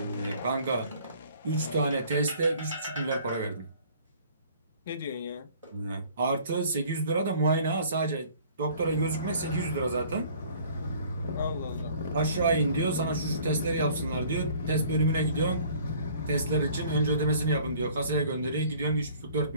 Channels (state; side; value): inverted; both; correlation -0.53